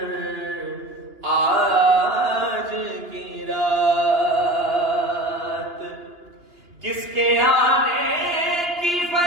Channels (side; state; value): left; late; 2.9 ms